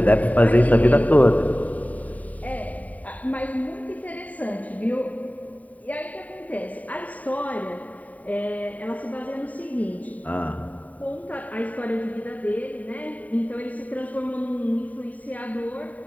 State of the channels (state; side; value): late; right; 0.071 ms